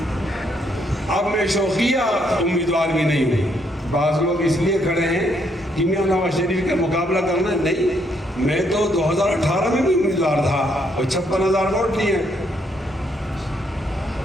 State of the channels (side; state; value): both; normal; correlation 0.72